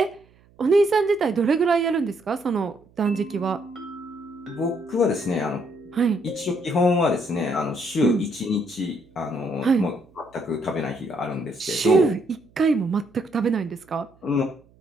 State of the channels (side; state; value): right; noise; hum, 30 dB below the sound